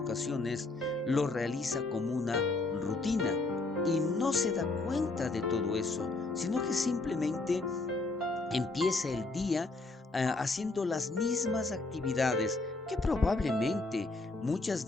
lo realiza como una rutina y no se da cuenta de todo eso, sino que simplemente empieza el día haciendo las mismas actividades que probablemente muchas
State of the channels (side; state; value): right; quieter; 3.3 dB